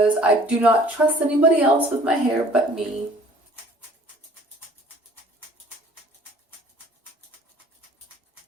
I do not trust anybody else with my hair but me.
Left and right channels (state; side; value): normal; both; correlation 0.53